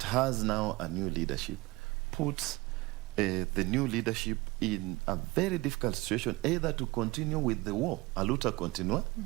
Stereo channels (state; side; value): quieter; left; 22.1 dB